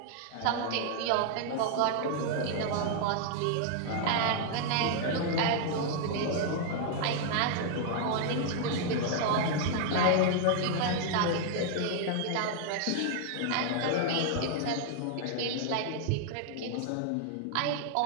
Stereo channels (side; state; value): both; different; correlation 0.00